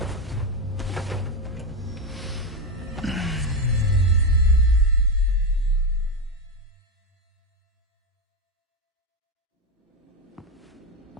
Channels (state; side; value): normal; both; correlation 0.10